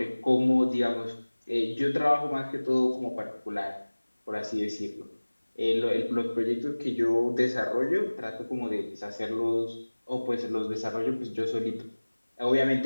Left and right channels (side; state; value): both; inverted; correlation -1.00